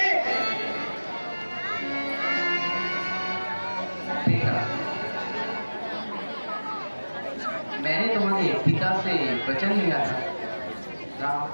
बेटा, मैंने तुम्हारे पिता से वचन लिया था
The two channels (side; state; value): both; inverted; correlation -1.00